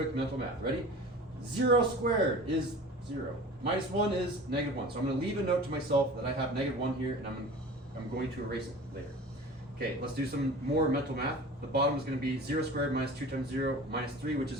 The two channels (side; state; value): both; normal; correlation 0.39